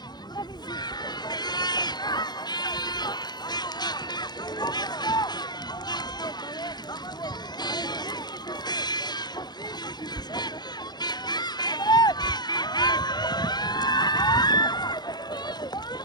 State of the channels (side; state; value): right; late; 0.20 ms